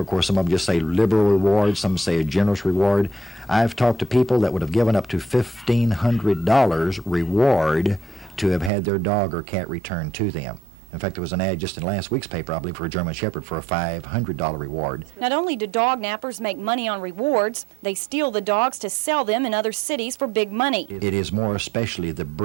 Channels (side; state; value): left; drops out; at 8.7 s